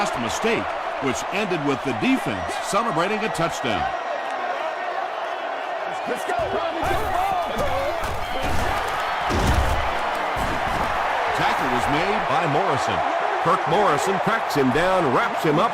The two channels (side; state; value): both; identical; correlation 1.00